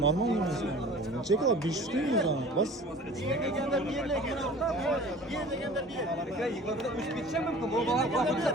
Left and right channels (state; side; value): normal; both; correlation 0.44